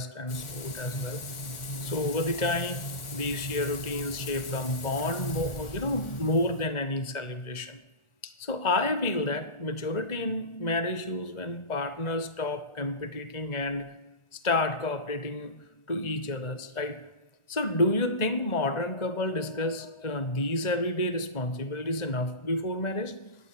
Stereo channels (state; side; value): late; right; 1.4 ms